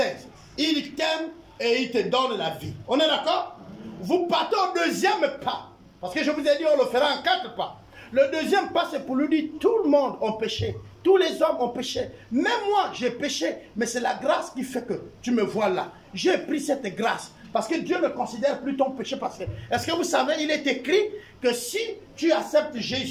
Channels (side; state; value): both; identical; correlation 1.00